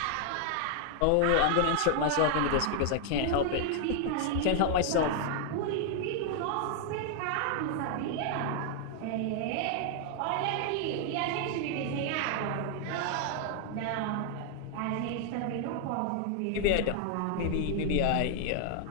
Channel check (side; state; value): both; different; correlation 0.00